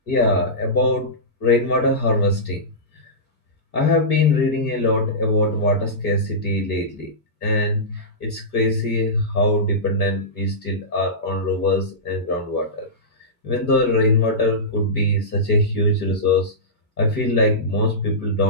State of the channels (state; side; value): normal; both; correlation -0.17